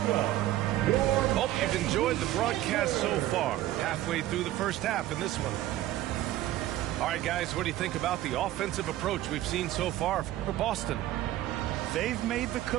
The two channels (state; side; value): quieter; left; 14.5 dB